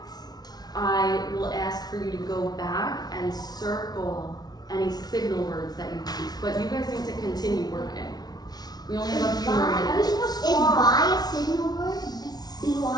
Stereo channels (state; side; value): late; right; 0.19 ms